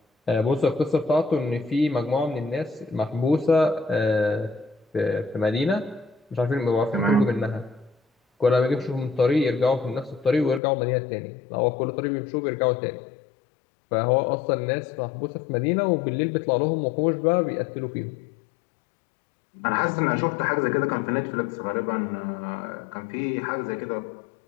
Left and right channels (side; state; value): right; drops out; at 10.6 s